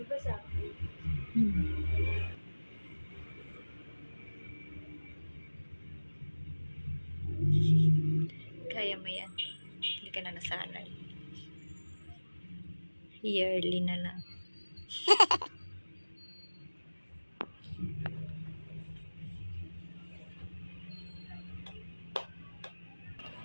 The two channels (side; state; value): both; inverted; correlation -1.00